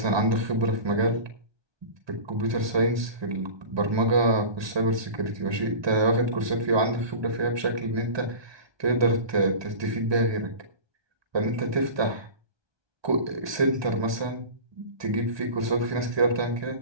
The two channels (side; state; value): left; late; 1.2 ms